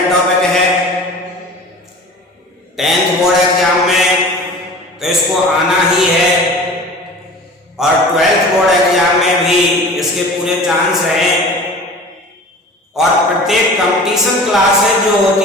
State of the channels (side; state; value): both; normal; correlation 0.40